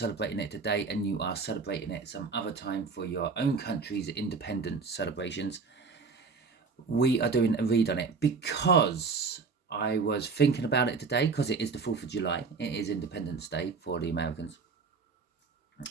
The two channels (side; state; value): left; quieter; 4.7 dB